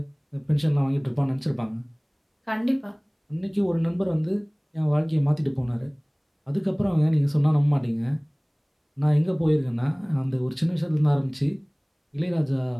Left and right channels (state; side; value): identical; both; correlation 1.00